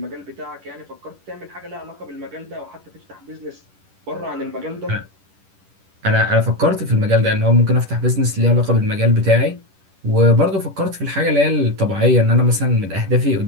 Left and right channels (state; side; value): late; left; 10 ms